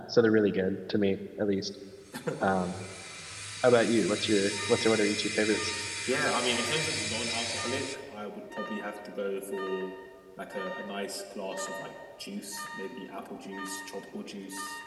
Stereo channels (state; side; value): identical; both; correlation 1.00